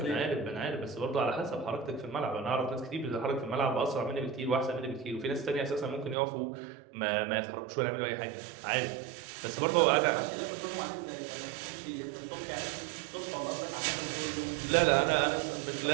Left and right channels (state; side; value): drops out; left; at 6.2 s